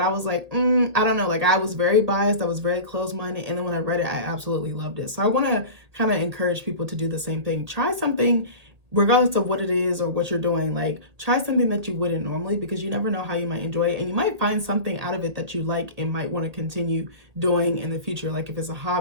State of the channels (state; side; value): late; left; 1.8 ms